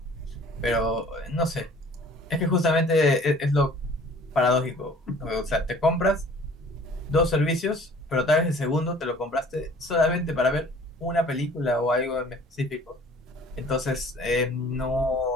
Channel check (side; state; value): both; normal; correlation 0.51